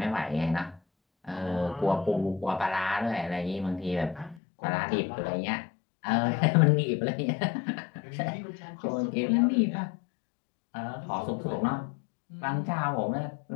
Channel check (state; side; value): drops out; right; at 4.4 s